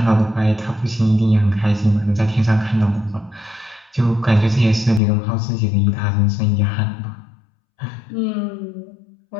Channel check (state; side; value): drops out; right; at 5.0 s